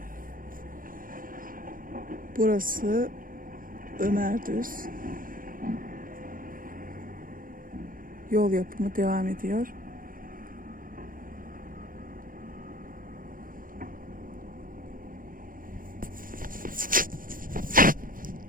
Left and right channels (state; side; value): late; left; 0.40 ms